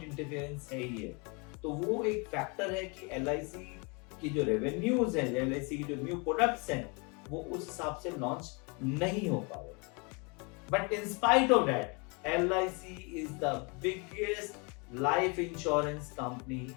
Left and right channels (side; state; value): right; quieter; 31.6 dB